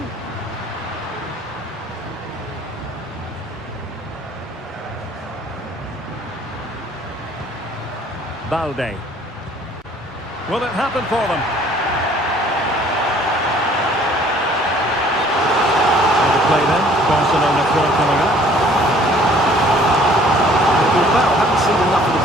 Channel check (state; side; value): normal; both; correlation 0.56